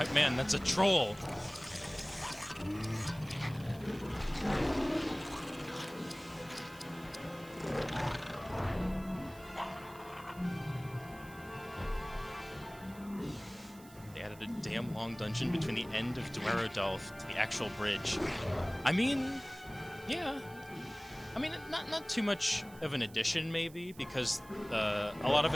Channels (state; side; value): noise; right; hiss, 22 dB below the sound